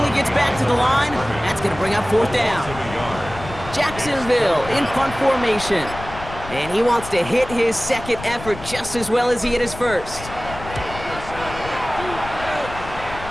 gets back to the line. That's going to bring up 4th down. Jacksonville in punt formation. And he wants to hit his 2nd effort just as well as he hit his 1st.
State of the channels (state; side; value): noise; left; rumble, 13 dB below the sound